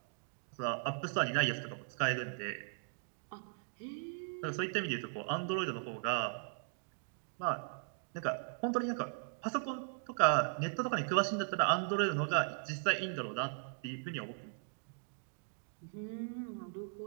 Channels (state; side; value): silent; left; digital silence